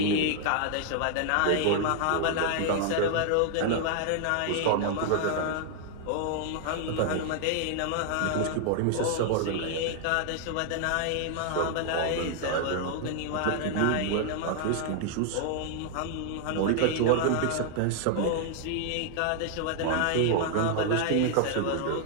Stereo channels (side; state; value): both; different; correlation 0.00